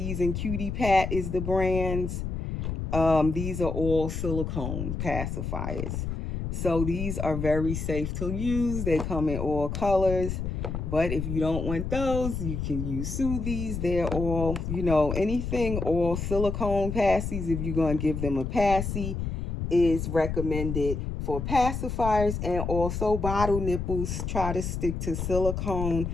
and Cutie Pat is the brands. These are all silicone pacifiers. So these are very safe to use. They come in all colors. But if you don't want those, you can use Soothies. They're all, anything, all silicone passies. If you're going to give them a passy, is recommended for pacifiers. And also bottle nipples. Try to stick to silicone.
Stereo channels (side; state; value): left; noise; rumble, 4 dB below the sound